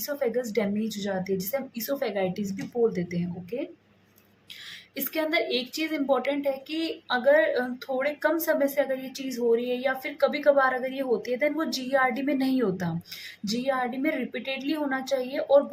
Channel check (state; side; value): identical; both; correlation 1.00